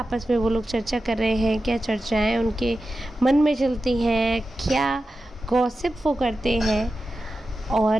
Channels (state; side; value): normal; both; correlation 0.92